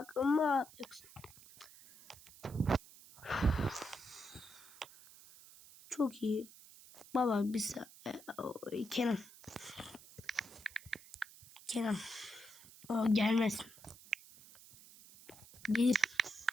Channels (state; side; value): noise; right; hiss, 20 dB below the sound